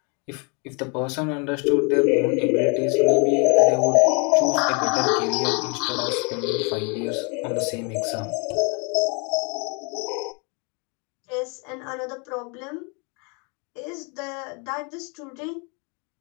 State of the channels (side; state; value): right; quieter; 34.0 dB